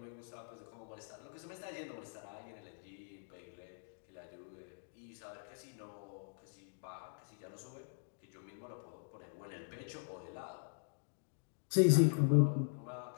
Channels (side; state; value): right; silent; digital silence